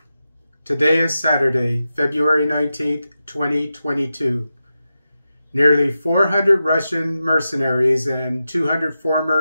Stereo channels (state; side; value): inverted; both; correlation -0.90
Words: Today is Saturday, February 19th, 2022. Nearly 400 Russian mercenaries and 200